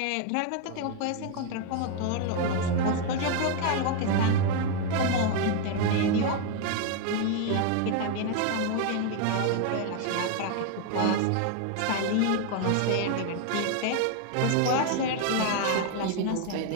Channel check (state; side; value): different; both; correlation 0.01